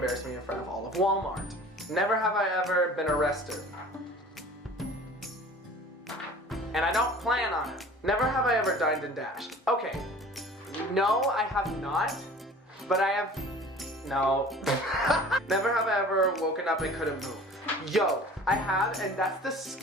me in front of all of Walmart. Never have I ever been arrested. And I don't plan on it. Never have I ever dined and dashed. Okay, no, I have not, but I have, no. Never have I ever woken up and couldn't move. Yo, I have, and that's the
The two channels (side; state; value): both; normal; correlation 0.45